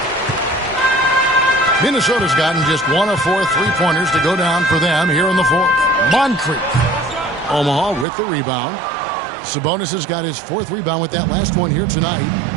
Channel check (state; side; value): drops out; left; at 8.1 s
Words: Minnesota's gotten just 1 of 4 3-pointers to go down for them here in the fourth. Moncrief. Omaha with the rebound. Sabonis has got his 4th rebound with that last one here tonight.